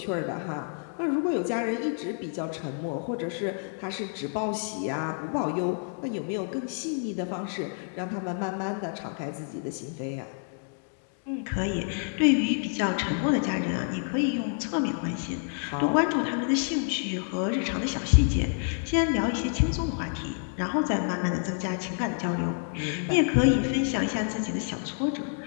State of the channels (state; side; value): silent; right; 59 dB below the other